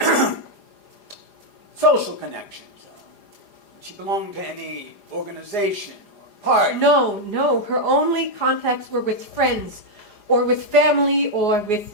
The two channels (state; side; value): late; right; 4.9 ms